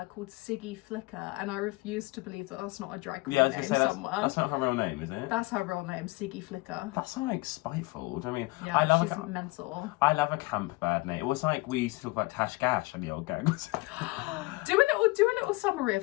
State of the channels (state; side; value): quieter; right; 23.4 dB